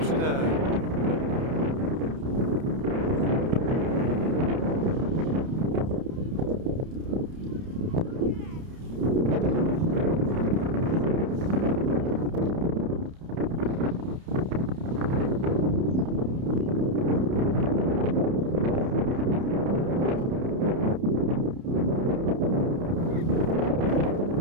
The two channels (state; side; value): late; left; 30 ms